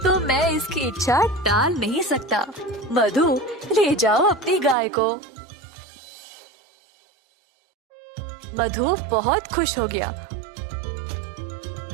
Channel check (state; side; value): drops out; left; at 4.8 s